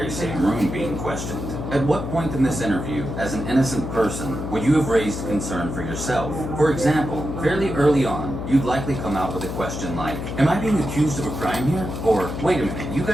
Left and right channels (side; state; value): left; noise; hum, 6 dB below the sound